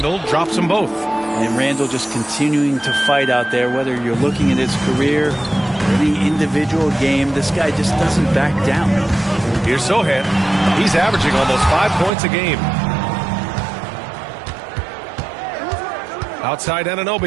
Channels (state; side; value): drops out; left; at 12.1 s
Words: drops them both. And Randle just continuing to fight out there, whether you're looking at his career, any individual game, this guy just doesn't back down. Here's Sohan. He's averaging almost 5 points a game. Outside